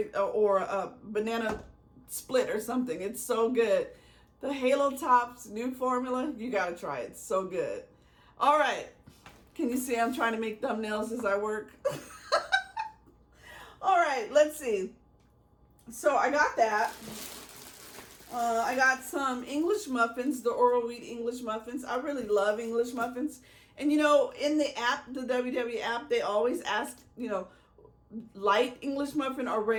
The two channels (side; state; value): both; identical; correlation 1.00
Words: or a banana split or something. It's so good. The Halo Top's new formula, you gotta try it. It's so good. All right. Can you see I'm trying to make thumbnails as I work? All right, let's see. So I got that. I got some English muffins, the Oral Wheat English muffins. I really love English muffins. And you know, in the app, the WW app, they always ask, you know, light English muffin or